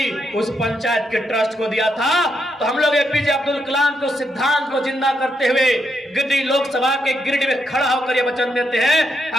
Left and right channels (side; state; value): both; normal; correlation 0.80